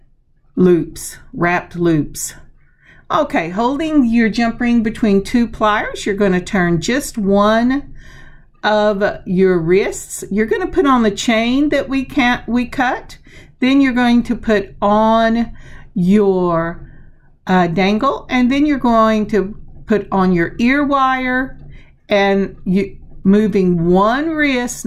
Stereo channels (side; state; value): both; identical; correlation 1.00